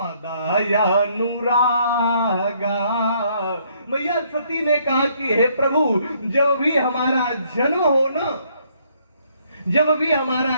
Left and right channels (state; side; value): inverted; both; correlation -0.68